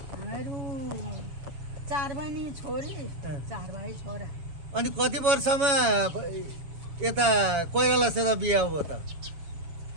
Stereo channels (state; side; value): late; left; 7.0 ms